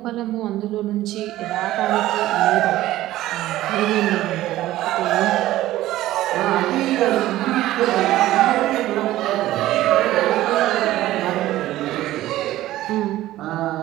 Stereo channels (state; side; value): quieter; left; 15.2 dB